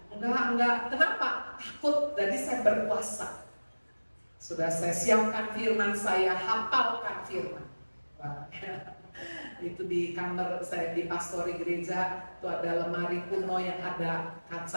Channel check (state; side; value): inverted; both; correlation -1.00